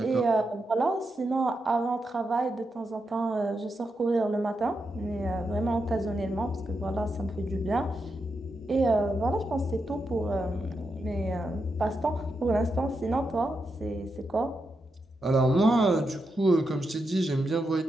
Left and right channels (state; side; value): normal; both; correlation 0.86